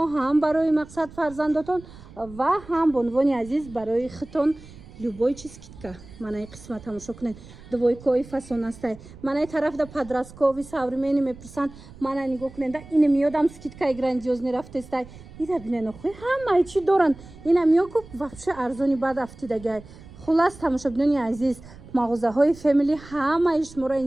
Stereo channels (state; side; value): noise; right; rumble, 19 dB below the sound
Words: ҳам барои мақсад фарзандотон ва ҳам бо унвони азиз барои хитон любой чиз скидка. Манаи қисма тамошо кунед. Двойкои фасон астай. Манаи тарафда подросткови современи мепурсанд. Мана нигоҳ кунед. Ин миёдам скидкаи грандиозни рафтестай. Ира бинен охӯи ҳамаи чӣ доранд. Ина миёку вообще арзони баъд афтидагай. Хулас тамошобинони азиз, мағозаҳои Family ҳамаи шуморо